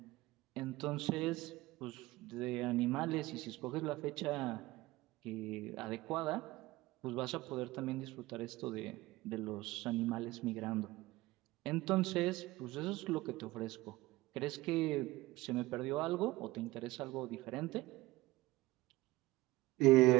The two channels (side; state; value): left; quieter; 19.3 dB